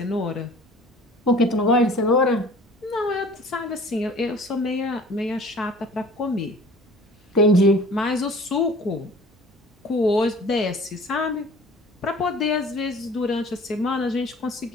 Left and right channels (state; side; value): normal; both; correlation 0.47